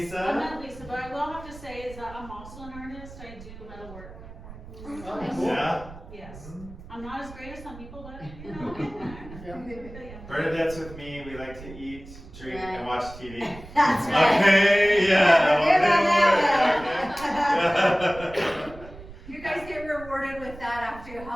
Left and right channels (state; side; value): noise; right; rumble, 16 dB below the sound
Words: I met Lisa, but I will have to say is that I'm also an artist. I do metal work. Yeah? Yes. I'm not as great as some people, but you know, I'm there. Bernadette's with me. We like to eat, drink, and watch TV. That's right. Okay, yeah. You guys get rewarded with that after you